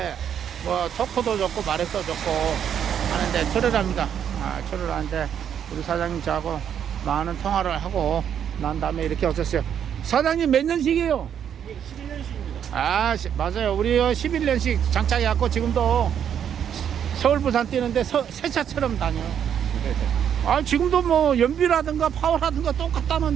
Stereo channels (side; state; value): left; quieter; 8.8 dB